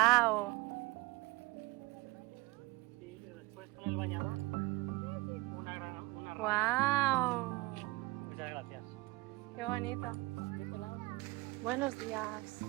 Y después con el bañador, una ¡Wow! Muchas gracias. ¡Qué bonito! Buenos días.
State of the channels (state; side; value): quieter; left; 22.1 dB